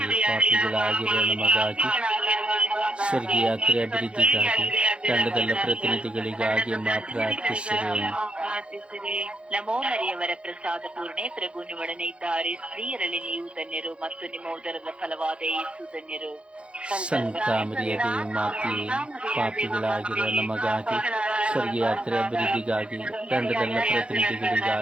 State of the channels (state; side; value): late; left; 0.058 ms